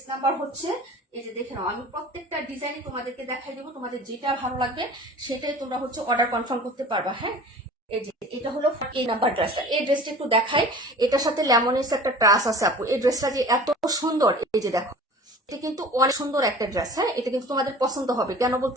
নাম্বার হচ্ছে। এই যে দেখে নাও, আমি প্রত্যেকটা ডিজাইনই তোমাদেরকে দেখাই দেবো, তোমাদের যেটা ভালো লাগবে সেটাই তোমরা হচ্ছে অর্ডার কনফার্ম করতে পারবা। হ্যাঁ, এই যে এটা হলো এই নাম্বার ড্রেসটা। এই ড্রেসটা একটু দেখাই, এটার সাথে লেমনেস একটা ট্রাস আছে আপু। এই ড্রেসটা যে এত সুন্দর, এই যে দেখো, এটা কিন্তু অনেক সুন্দর একটা ড্রেস। হ্যাঁ, এটা কিন্তু তোমাদের পছন্দ হবে। কেন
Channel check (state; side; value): normal; both; correlation 0.42